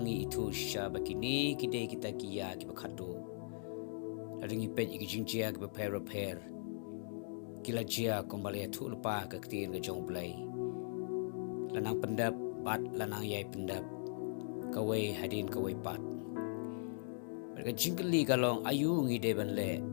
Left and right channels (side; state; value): right; silent; digital silence